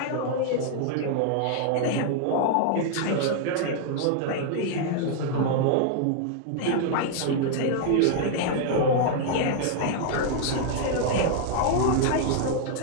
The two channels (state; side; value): different; both; correlation -0.01